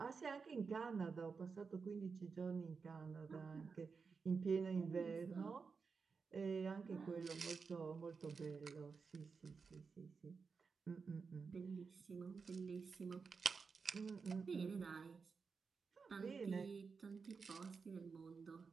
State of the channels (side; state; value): left; quieter; 5.1 dB